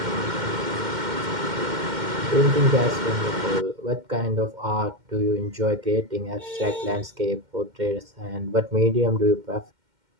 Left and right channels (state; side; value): late; left; 2.1 ms